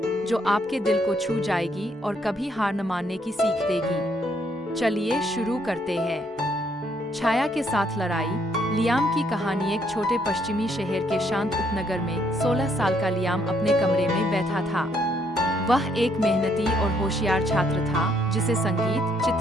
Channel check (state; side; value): normal; both; correlation 0.70